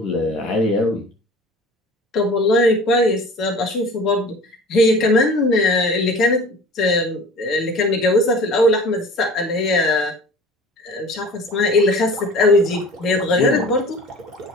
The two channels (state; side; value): normal; both; correlation 0.42